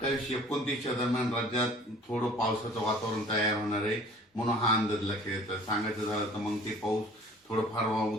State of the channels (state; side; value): normal; both; correlation 0.49